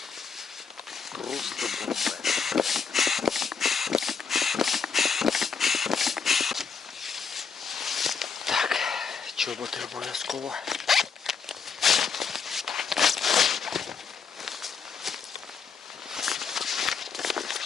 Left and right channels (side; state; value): right; quieter; 5.8 dB